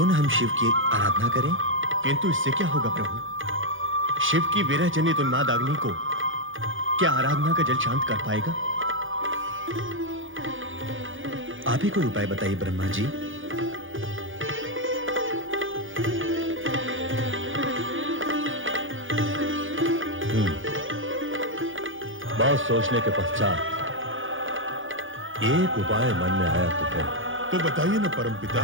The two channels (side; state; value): left; late; 0.58 ms